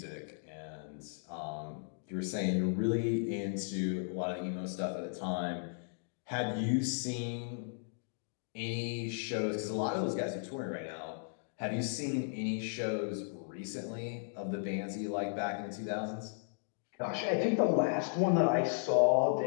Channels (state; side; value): silent; right; digital silence